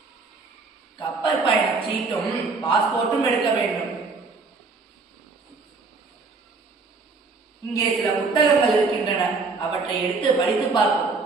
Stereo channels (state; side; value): quieter; left; 4.2 dB